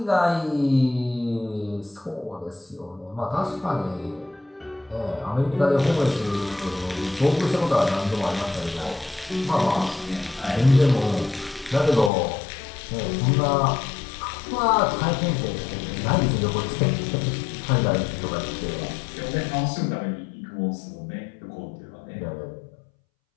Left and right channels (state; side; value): drops out; right; at 12.1 s